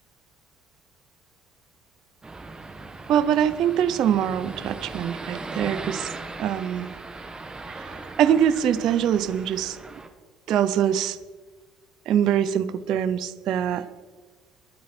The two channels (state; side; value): quieter; left; 8.8 dB